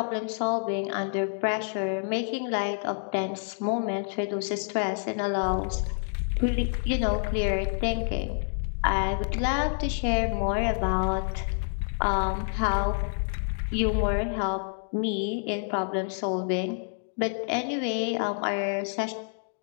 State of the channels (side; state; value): right; silent; digital silence